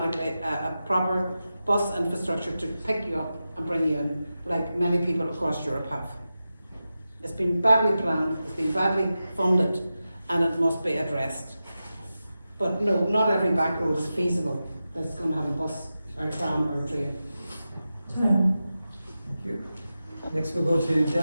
a proper bus infrastructure to pick you up and bring you in, like many people across Europe have. It's been badly planned, it's been badly funded, and it must be addressed. But no, not every back road is feasible that's going to have a bus or a tram or a train. Thank you. Next we'll go to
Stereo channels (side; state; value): both; inverted; correlation -0.92